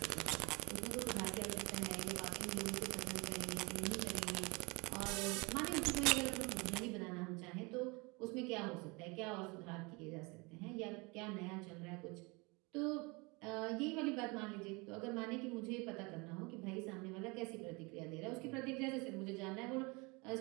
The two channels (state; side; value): quieter; left; 27.5 dB